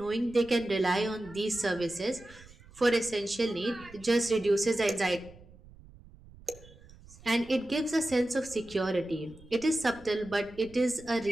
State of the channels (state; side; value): noise; right; rumble, 22 dB below the sound